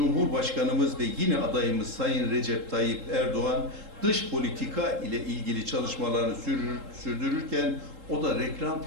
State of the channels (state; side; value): late; left; 3.7 ms